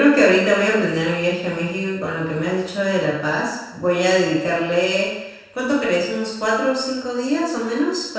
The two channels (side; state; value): both; identical; correlation 1.00